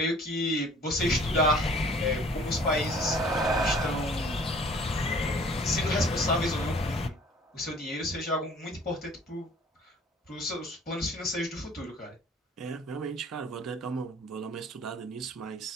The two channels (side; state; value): both; normal; correlation 0.52